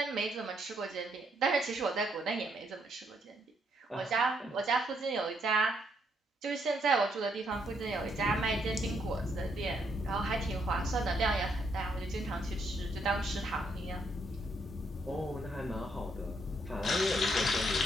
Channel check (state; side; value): normal; both; correlation 0.74